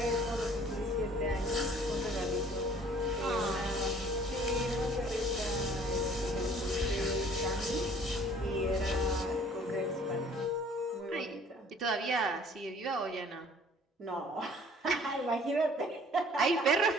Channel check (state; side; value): normal; both; correlation 0.54